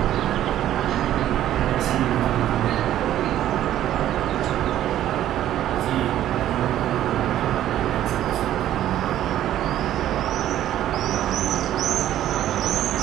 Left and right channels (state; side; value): quieter; left; 12.3 dB